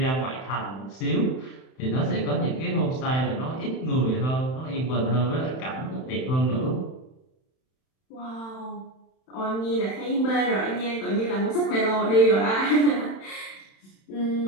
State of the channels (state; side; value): late; right; 31 ms